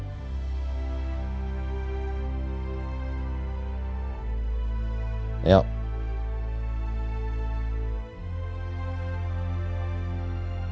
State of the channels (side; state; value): both; identical; correlation 1.00